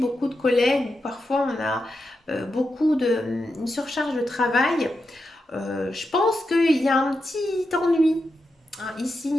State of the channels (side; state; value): both; normal; correlation 0.87